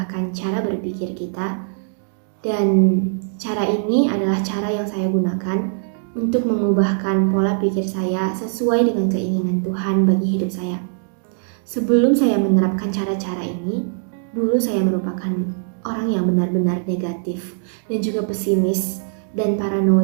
cara berpikir kita. Dan cara ini adalah cara yang saya gunakan untuk mengubahkan pola pikir saya sesuai dengan keinginan Tuhan bagi hidup saya. Sebelum saya menerapkan cara-cara ini, dulu saya merupakan orang yang benar-benar negatif dan juga pesimis dan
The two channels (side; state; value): left; silent; digital silence